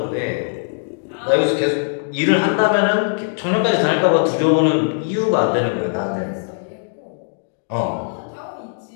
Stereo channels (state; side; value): silent; right; digital silence